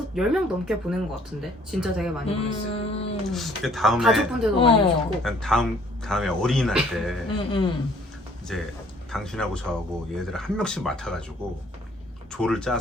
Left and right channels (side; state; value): both; normal; correlation 0.59